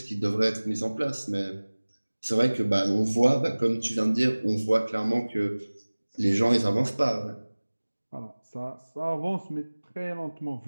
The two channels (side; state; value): both; inverted; correlation -1.00